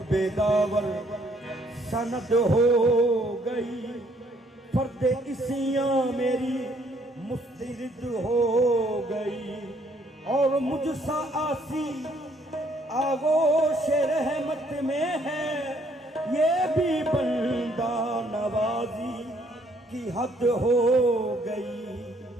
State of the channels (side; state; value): both; normal; correlation 0.66